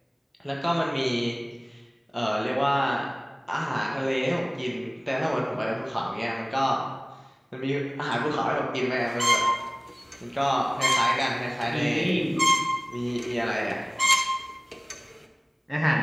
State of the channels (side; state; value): both; identical; correlation 1.00